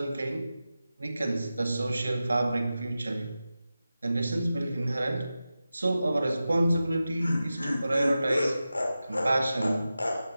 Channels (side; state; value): both; inverted; correlation -0.93